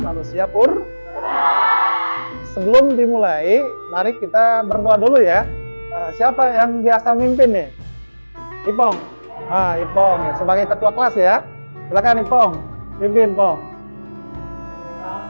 purba. Sebelum dimulai, mari kita berdoa dulu ya. Siapa yang biasa mimpin nih? Ipong. Ipong sebagai ketua kelas ya. Silakan Ipong, pimpin Pong.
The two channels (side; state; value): both; inverted; correlation -1.00